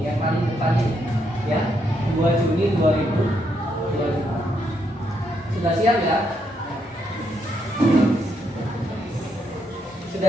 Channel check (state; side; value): normal; both; correlation 0.77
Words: yang paling depan ini, ya. 2 Juni 2025. Sudah siap, ya?